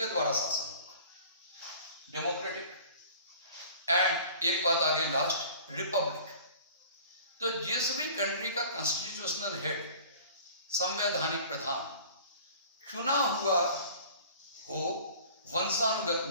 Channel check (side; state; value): both; inverted; correlation -0.47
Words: द्वारा शासन होगा, डेमोक्रेटिक। एंड एक बात आगे लास्ट, रिपब्लिक। तो जिस भी कंट्री का कॉन्स्टिट्यूशनल हेड, संवैधानिक प्रधान चुना हुआ हो, वंशानुगत